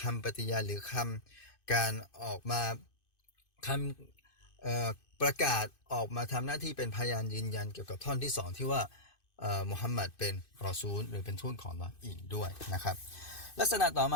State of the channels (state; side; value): late; right; 2.5 ms